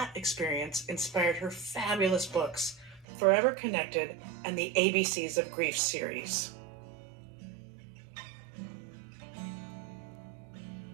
experience inspired her fabulous books, Forever Connected and the ABCs of Grief series.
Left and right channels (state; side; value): drops out; left; at 3.1 s